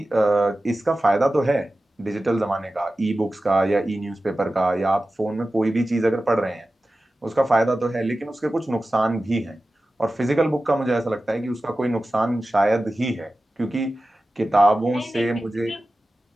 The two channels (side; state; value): both; normal; correlation 0.95